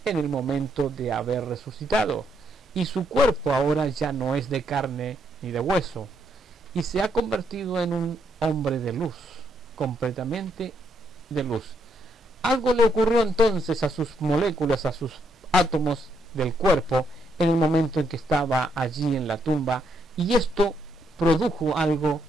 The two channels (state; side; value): normal; both; correlation 0.75